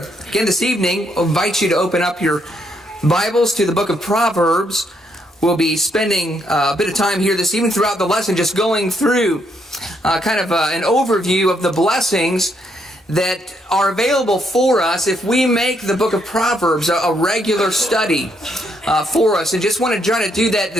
again this evening. I'll invite you to open up your Bibles to the book of Proverbs. We'll be spending a bit of time here this evening throughout the lesson just going through an overview of the blessings that are available for us if we make the book of Proverbs a regular study for us. And just want to try to do that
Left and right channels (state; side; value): normal; both; correlation 0.74